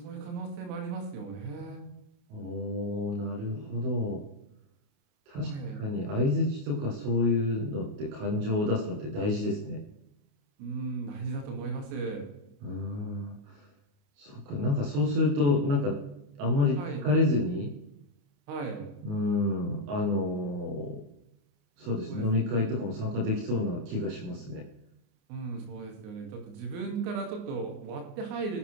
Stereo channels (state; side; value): late; left; 28 ms